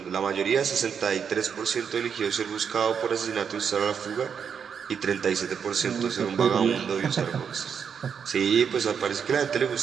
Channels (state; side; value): quieter; left; 7.1 dB